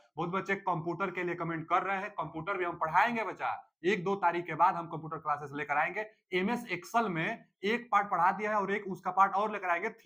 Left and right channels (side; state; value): both; identical; correlation 1.00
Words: बहुत बच्चे कंप्यूटर के लिए कमेंट कर रहे हैं। कंप्यूटर भी हम पढ़ाएंगे बच्चा, 1-2 तारीख के बाद हम कंप्यूटर क्लासेस लेकर आएंगे। एमएस एक्सेल में एक पार्ट पढ़ा दिया है और एक उसका पार्ट और लेकर आएंगे